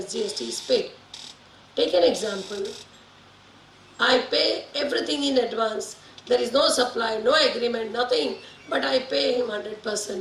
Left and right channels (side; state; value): both; identical; correlation 1.00